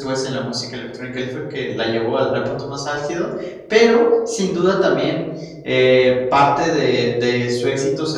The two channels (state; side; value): identical; both; correlation 1.00